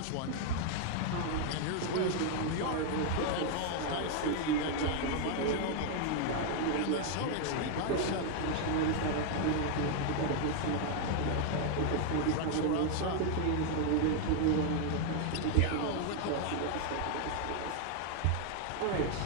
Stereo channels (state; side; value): different; both; correlation 0.00